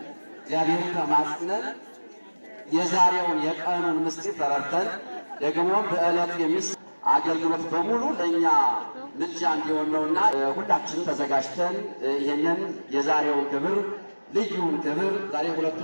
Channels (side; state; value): both; inverted; correlation -1.00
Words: እግዚአብሔርን ተማጽነን የዛሬውን የቀኑን ምስጢር ተረድተን ደግሞ በዕለቱ አገልግሎት በሙሉ ለእኛ ምልጃ እንዲሆን ነውና ሁላችንም ተዘጋጅተን ይህንን የዛሬውን ክብር ልዩውን ክብር ዛሬ